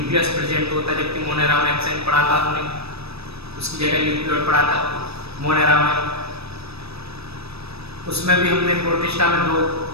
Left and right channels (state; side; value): late; left; 0.78 ms